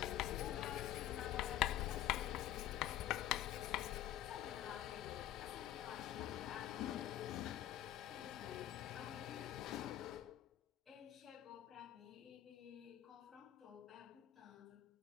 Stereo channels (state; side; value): quieter; right; 12.8 dB